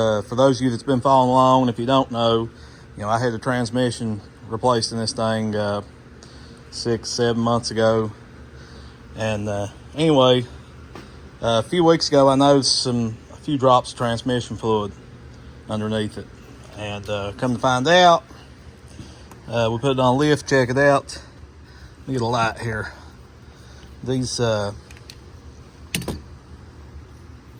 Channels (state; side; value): identical; both; correlation 1.00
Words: those of you that's been following along, if you don't know, I had the transmission replaced in this thing 6-7 months ago. And anyway, a few weeks ago I noticed a few drops of transmission fluid underneath it, and come to find out, we put it on a lift, check it out. Let me get a light here. These good